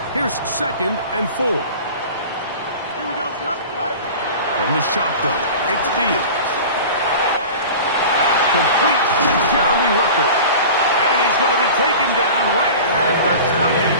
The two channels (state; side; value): inverted; both; correlation -0.37